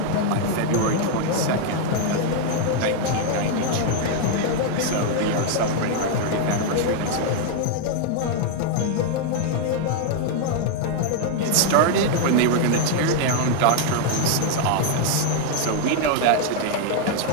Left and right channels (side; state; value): both; different; correlation 0.00